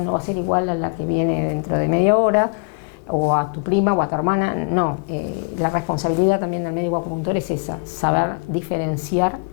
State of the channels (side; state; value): right; quieter; 33.1 dB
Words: no va a ser igual a la que viene dentro de media hora, o a tu prima o a tu hermana, no. La responsabilidad también del médico acupuntor es esa, saber diferenciar